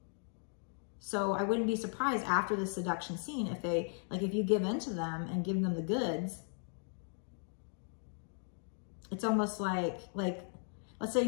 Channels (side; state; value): right; silent; 53 dB below the other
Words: So I wouldn't be surprised after the seduction scene if they, like, if you give in to them and give them the goods, it's almost like, let's say